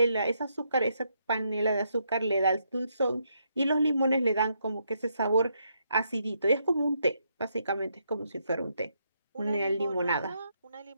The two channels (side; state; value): both; inverted; correlation -0.78